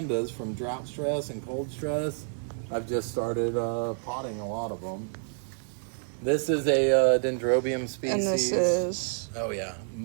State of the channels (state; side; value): silent; left; 56 dB below the other